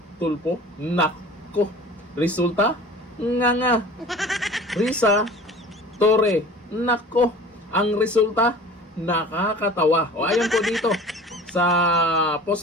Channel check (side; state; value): both; normal; correlation 0.42